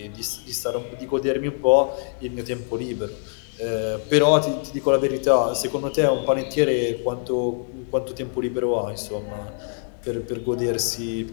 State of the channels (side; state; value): right; silent; 63 dB below the other